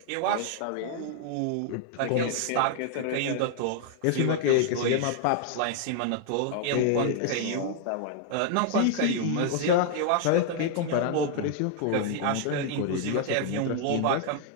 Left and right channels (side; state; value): both; different; correlation 0.00